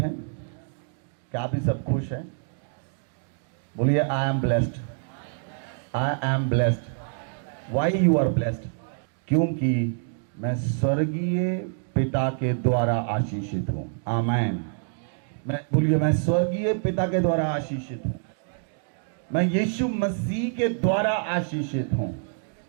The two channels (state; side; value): silent; left; 61 dB below the other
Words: क्या आप भी सब खुश हैं? बोलिए I am blessed, I am blessed. Why you are blessed? क्योंकि मैं स्वर्गीय पिता के द्वारा आशीषित हूं। आमेन। बोलिए मैं स्वर्गीय पिता के द्वारा आशीषित हूं। मैं यीशु मसीह के द्वारा आशीषित हूं।